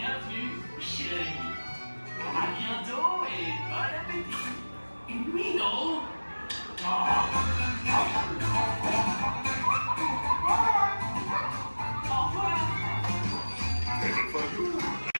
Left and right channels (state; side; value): inverted; both; correlation -1.00